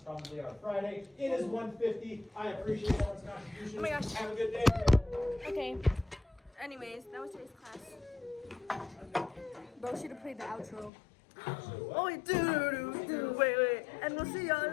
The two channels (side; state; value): right; drops out; at 10.9 s